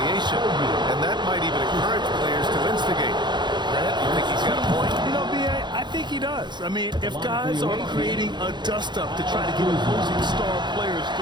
and that might even encourage players to instigate. Grant, you think he's got a point? You know, B.A., I think he does. I mean, if guys are creating a dust-up to try to get opposing star players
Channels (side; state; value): left; late; 0.21 ms